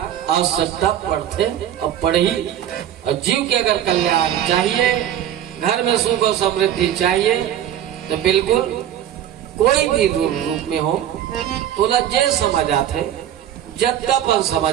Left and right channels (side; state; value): left; quieter; 10.8 dB